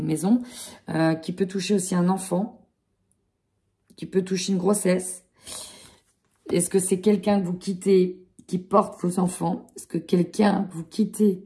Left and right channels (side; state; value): both; identical; correlation 1.00